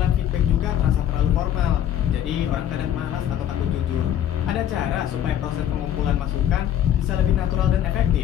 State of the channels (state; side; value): quieter; right; 10.6 dB